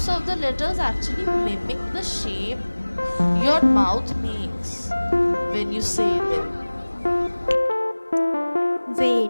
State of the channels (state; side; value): inverted; both; correlation -1.00